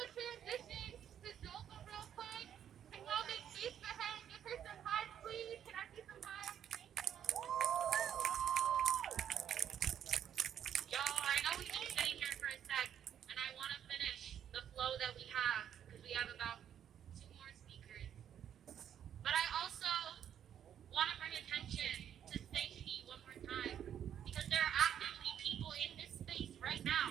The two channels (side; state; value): left; quieter; 9.5 dB